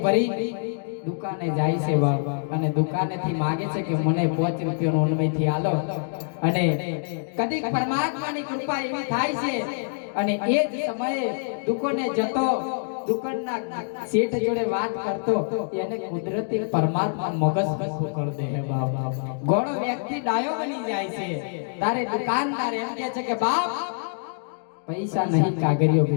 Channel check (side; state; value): right; silent; digital silence